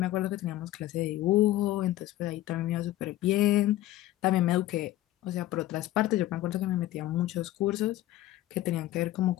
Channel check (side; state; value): right; quieter; 15.0 dB